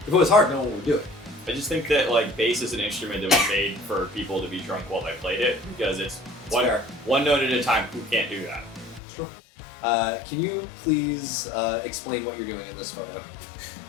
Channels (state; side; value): drops out; right; at 9.0 s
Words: If it was hard, no one would do it. I just think that like bass is an instrument that was made for people to be drunk while they played it because it's one note at a time. Who can't do that? Sure. Can you please explain what you're doing in this photo?